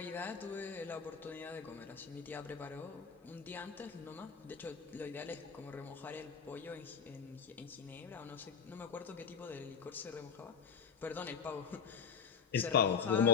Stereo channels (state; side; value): quieter; right; 6.3 dB